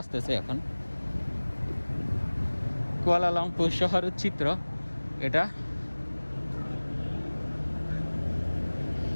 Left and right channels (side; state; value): both; inverted; correlation -1.00